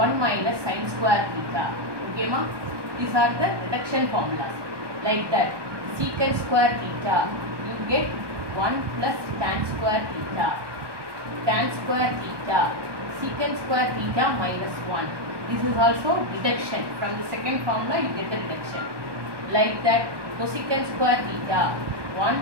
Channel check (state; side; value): late; left; 1.2 ms